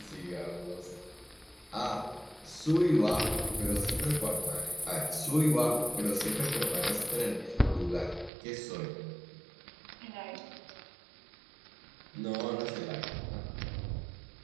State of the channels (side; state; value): left; drops out; at 8.3 s